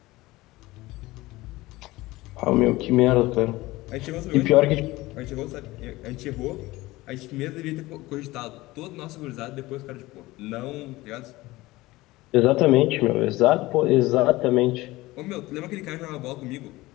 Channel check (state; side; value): quieter; right; 19.3 dB